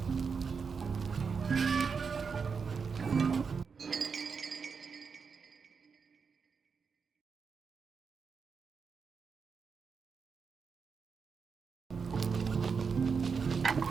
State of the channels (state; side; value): quieter; left; 5.6 dB